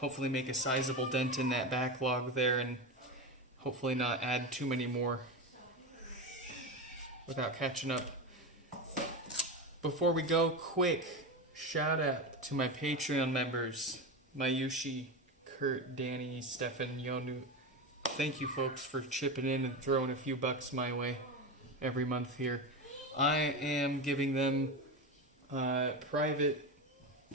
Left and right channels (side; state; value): both; normal; correlation 0.19